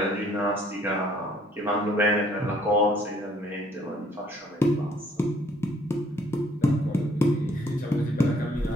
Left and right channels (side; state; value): both; normal; correlation 0.63